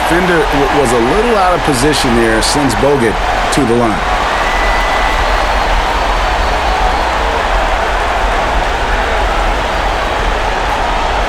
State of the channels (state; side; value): identical; both; correlation 1.00